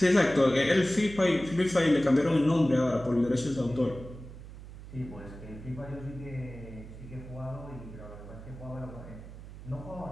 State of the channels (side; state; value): right; noise; hum, 14 dB below the sound